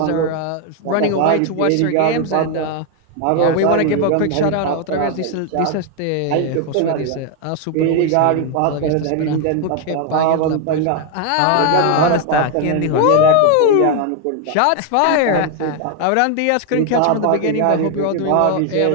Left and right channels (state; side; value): different; both; correlation 0.01